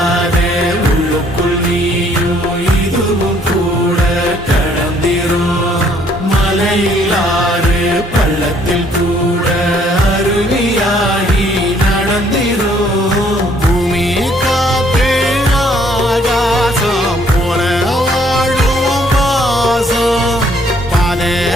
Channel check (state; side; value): normal; both; correlation 0.64